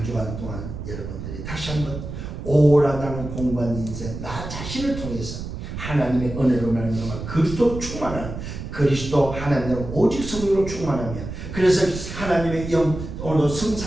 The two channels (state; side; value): noise; right; rumble, 8 dB below the sound